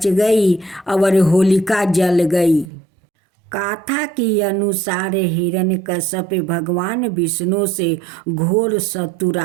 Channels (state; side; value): drops out; left; at 2.7 s